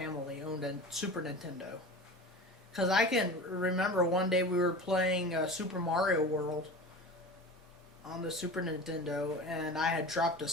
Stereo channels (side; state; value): both; normal; correlation 0.33